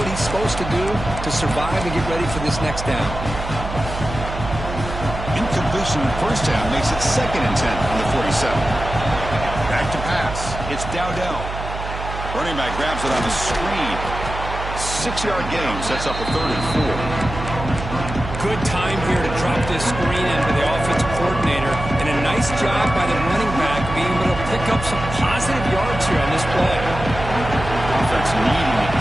he's supposed to do to survive and get ready for this next down. Incompletion first down makes it 2nd and 10 on the 47. Back to pass. It's Dowdell. Running back grabs it on the screen. 6-yard gain sets up a 3rd and 4. Good time here to drop this screen into the offensive coordinator, and a nice job by the running back being able to pick up some positive yards here on this play. Offense needing to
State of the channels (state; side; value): noise; right; hum, 8 dB below the sound